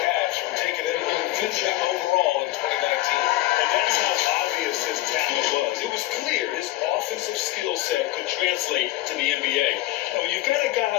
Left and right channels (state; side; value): quieter; right; 17.0 dB